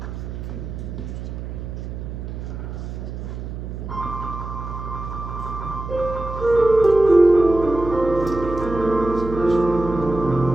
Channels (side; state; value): right; noise; hum, 8 dB below the sound